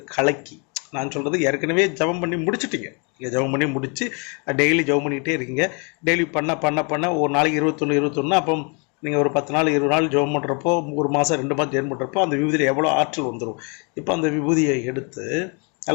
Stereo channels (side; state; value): right; quieter; 34.7 dB